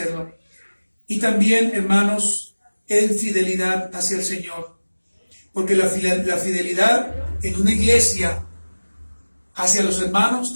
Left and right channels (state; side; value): inverted; both; correlation -1.00